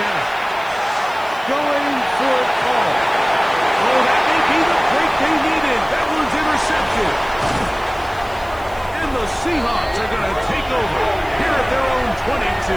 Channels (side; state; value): right; noise; hiss, 24 dB below the sound